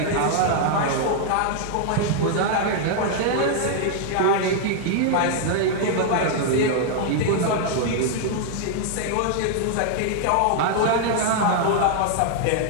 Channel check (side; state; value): both; different; correlation 0.00